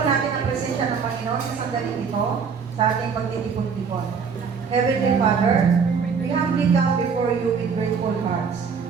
natin ang presensya ng Panginoon sa sandaling ito sa ating pagtitipon-tipon. Heavenly Father, we humbly come before you with grateful hearts.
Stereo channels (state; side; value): quieter; left; 5.9 dB